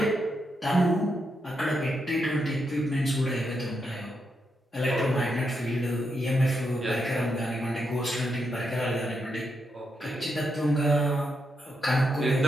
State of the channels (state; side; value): normal; both; correlation 0.82